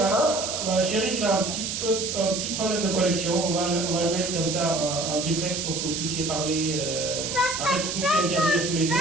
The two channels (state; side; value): noise; right; hiss, 3 dB below the sound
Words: Chérif a un petit problème de connexion. On va le mettre comme ça en duplex pour que vous puissiez parler, après que vous puissiez intervenir tous les